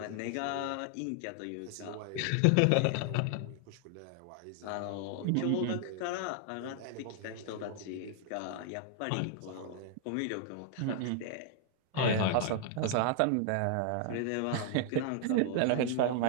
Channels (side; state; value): both; different; correlation 0.00